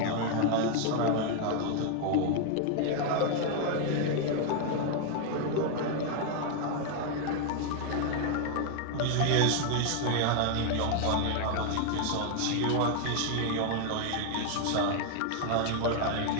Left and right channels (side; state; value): both; different; correlation 0.00